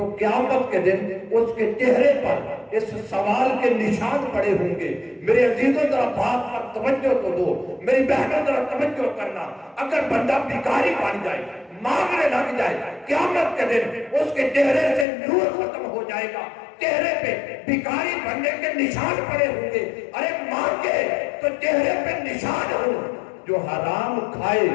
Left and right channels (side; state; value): right; drops out; at 15.1 s